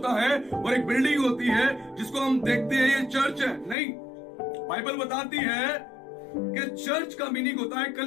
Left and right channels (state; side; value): drops out; right; at 3.8 s